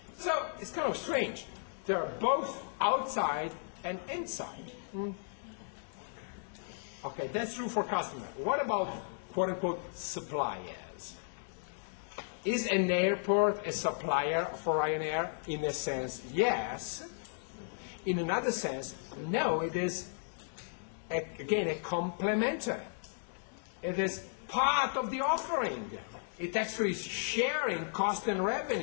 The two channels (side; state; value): right; silent; digital silence